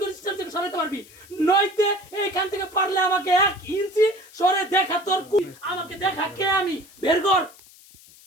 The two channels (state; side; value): noise; left; hiss, 23 dB below the sound